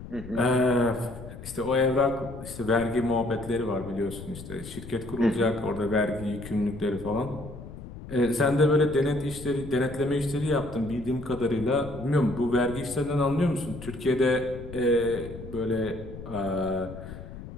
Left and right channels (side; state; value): left; noise; rumble, 13 dB below the sound